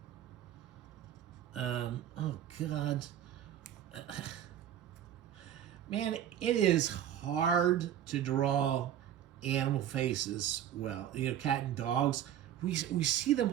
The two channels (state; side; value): quieter; left; 10.7 dB